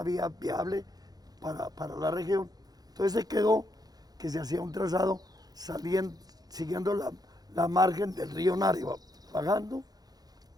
vía viable para la región, entonces se quedó que se hacía un trazado siguiendo la margen del río Nariva, bajando,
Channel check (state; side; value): late; left; 0.19 ms